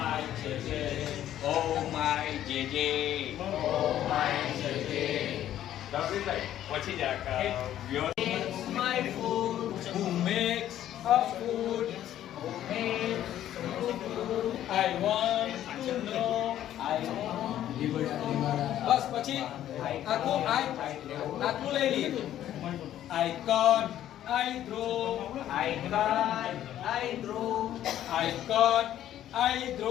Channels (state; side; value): quieter; right; 11.9 dB